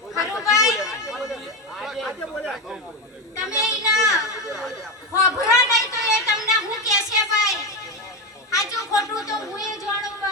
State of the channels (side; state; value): both; normal; correlation 0.14